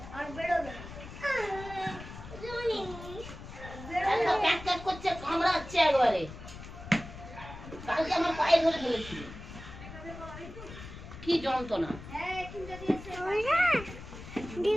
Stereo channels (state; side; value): noise; left; rumble, 13 dB below the sound